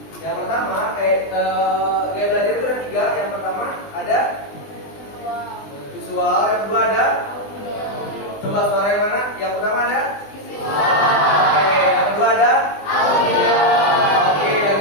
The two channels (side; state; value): right; late; 20 ms